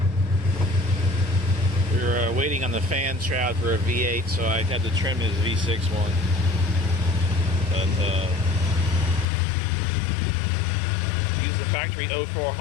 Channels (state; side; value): drops out; right; at 9.2 s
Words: We were waiting on the fan shroud for a V8, so I had to trim his V6 one. But use the factory 04